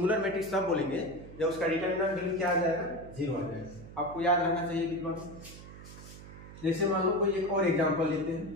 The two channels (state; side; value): noise; right; hum, 15 dB below the sound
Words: मैट्रिक्स तब बोलेंगे जब उसका डिटरमिनेंट वैल्यू क्या आ जाएगा 0 आ जाएगा। आपको याद रखना चाहिए विद्वान। जैसे मान लो कोई एक और एग्जांपल लेते हैं।